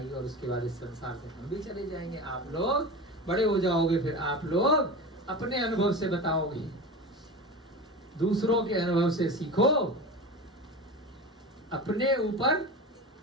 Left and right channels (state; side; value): normal; both; correlation 0.28